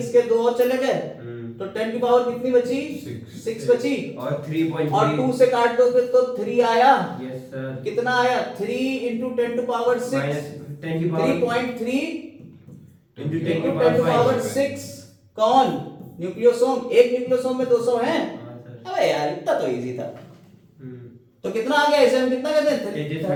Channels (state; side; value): identical; both; correlation 1.00